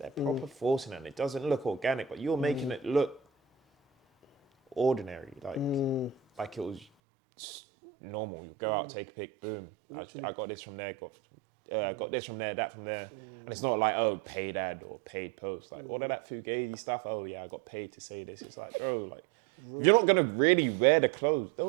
proper forcing it, and it doesn't look organic, but you're making it look ordinary, like it was normal. You go out, take a pic, boom. I got this from there, got this from there, that from there. And it's not like, oh, paid ad or paid post. Like, all of that fugazi stuff, oh yeah, I got paid to say this. It's like, bro, like, if you're not going to really wear the clothes,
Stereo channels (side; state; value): left; drops out; at 6.9 s